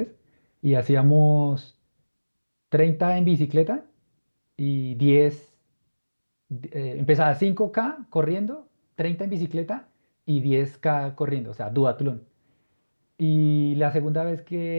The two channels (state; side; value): inverted; both; correlation -1.00